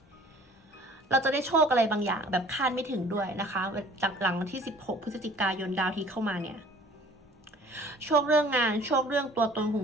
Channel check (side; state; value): both; normal; correlation 0.51